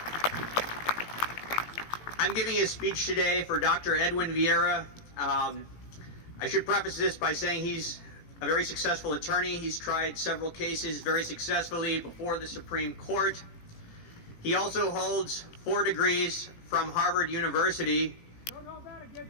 I'm giving a speech today for Dr. Edwin Viera. I should preface this by saying he's a very successful attorney. He's tried several cases very successfully before the Supreme Court. He also holds 4 degrees from Harvard University. Don't hold that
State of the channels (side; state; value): right; late; 18 ms